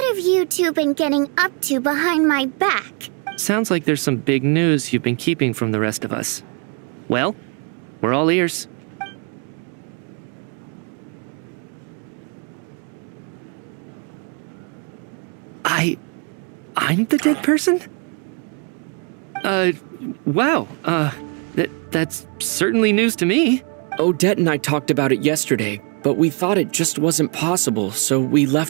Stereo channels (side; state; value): left; quieter; 36.7 dB